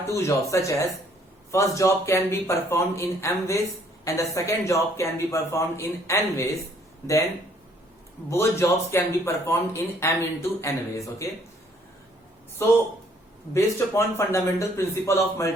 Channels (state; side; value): normal; both; correlation 0.63